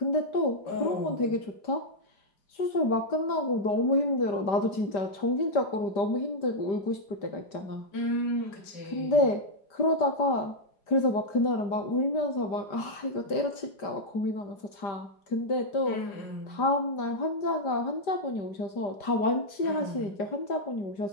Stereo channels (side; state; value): right; late; 5.0 ms